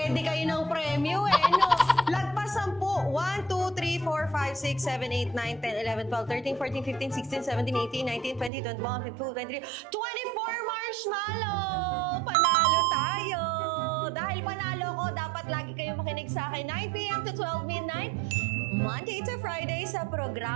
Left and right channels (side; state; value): left; drops out; at 8.5 s